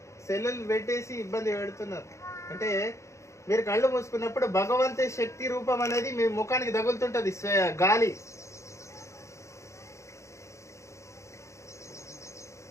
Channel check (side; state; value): right; late; 0.14 ms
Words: సెల్లులు పెట్టేసి ఇబ్బంది పెడుతున్నారు. అంటే మీరు కళ్ళు మూసుకున్నప్పుడు భగవంతు శక్తి రూపం అనేది మీ ముఖానికి తగులుతుంటుంది, గాలి.